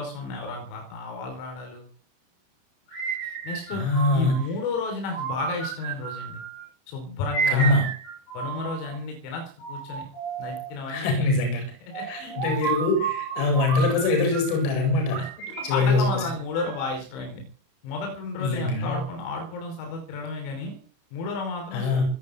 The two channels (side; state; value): right; late; 30 ms